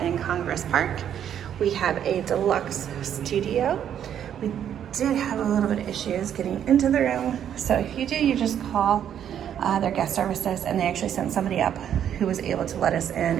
in Congress Park. We have a deluxe studio. We did have a little bit of issues getting into the room. So if you do, you just call their guest services, and they actually sent somebody up who was able to let us in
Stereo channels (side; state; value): left; quieter; 9.5 dB